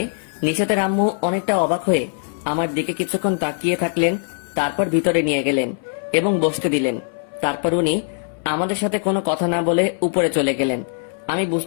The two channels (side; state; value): right; silent; 60 dB below the other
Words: নিশাতের আম্মু অনেকটা অবাক হয়ে আমার দিকে কিছুক্ষণ তাকিয়ে থাকলেন, তারপর ভিতরে নিয়ে গেলেন এবং বসতে দিলেন। তারপর উনি আমাদের সাথে কোনো কথা না বলে উপরে চলে গেলেন। আমি